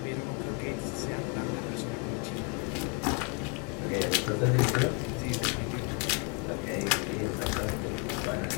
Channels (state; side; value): quieter; right; 33.3 dB